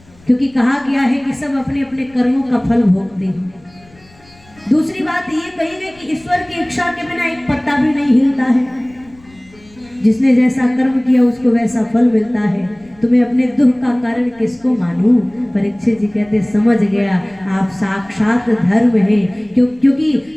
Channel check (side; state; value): left; noise; rumble, 28 dB below the sound